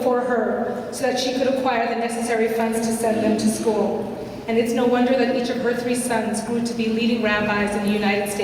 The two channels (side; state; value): both; identical; correlation 1.00